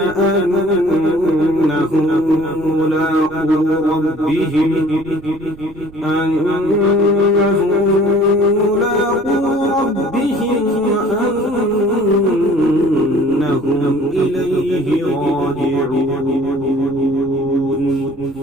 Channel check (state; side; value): noise; right; rumble, 21 dB below the sound